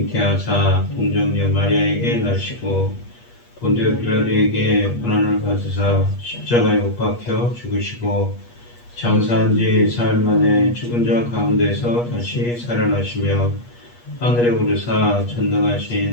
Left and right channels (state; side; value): late; right; 8.4 ms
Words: 동정녀 마리아에게 나시고 본디오 빌라도에게 고난을 받으사 십자가에 못 박혀 죽으시고 장사한 지 사흘 만에 죽은 자 가운데서 다시 살아나시며 하늘에 오르사